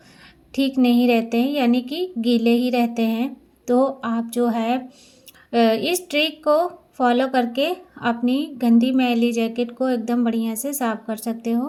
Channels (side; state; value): both; identical; correlation 1.00